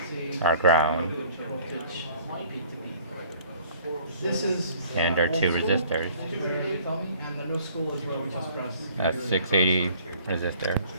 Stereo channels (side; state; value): both; inverted; correlation -0.54